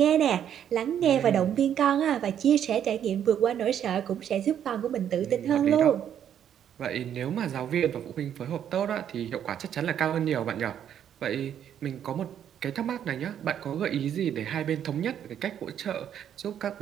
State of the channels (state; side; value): quieter; left; 9.5 dB